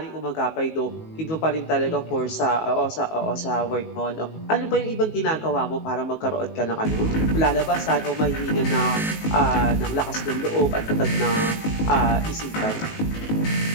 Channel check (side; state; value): right; late; 19 ms